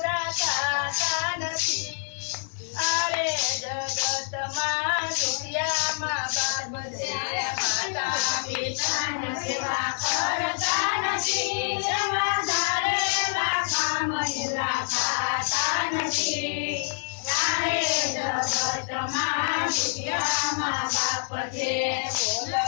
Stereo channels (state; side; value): silent; right; 59 dB below the other